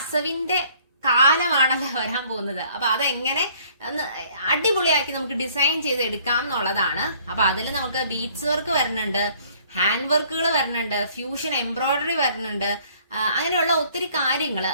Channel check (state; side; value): inverted; both; correlation -0.59